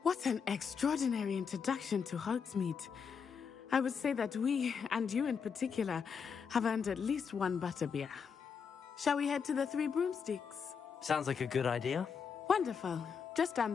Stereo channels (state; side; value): quieter; right; 6.3 dB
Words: What an extraordinary introduction to Hogsmeade. I would say that we, and you in particular, have earned at least one butterbeer. Shall we head to the Three Broomsticks? Sounds like a good idea. Wonderful. Just down